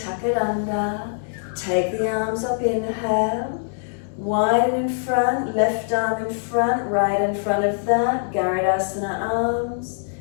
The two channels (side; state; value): right; silent; digital silence